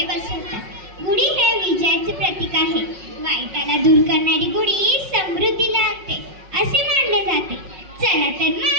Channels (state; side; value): late; left; 5.4 ms